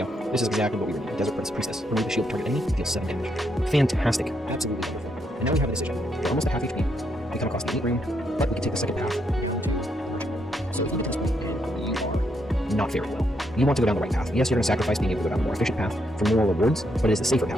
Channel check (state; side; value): normal; both; correlation 0.77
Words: This is exactly what we were needing. Desert Priestess. Remove the shield of target enemy. Deals 7 damage. Fantastic. Absolutely wonderful. And now we have a decision. We're almost at half HP. We come across the elite room, but we can take the second path. So if you get to this point and you are not faring well, you want to go down the right path. Yes, you're going to sacrifice being able to go down the more efficient path for more rewards, but it is the safer